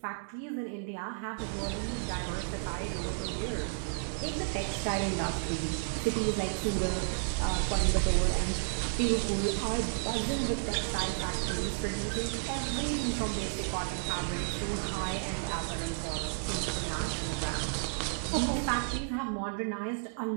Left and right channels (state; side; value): silent; left; digital silence